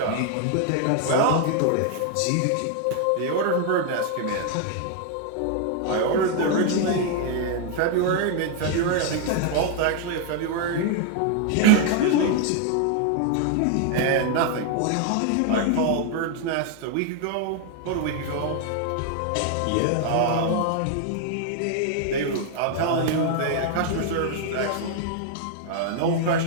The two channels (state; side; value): different; both; correlation 0.00